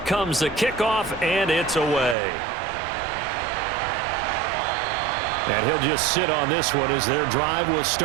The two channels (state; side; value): drops out; left; at 2.1 s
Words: the kickoff, and it's away. And he'll just sit on this one as their drive will